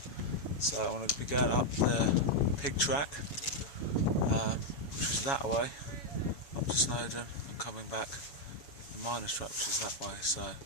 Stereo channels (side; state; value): right; late; 7.2 ms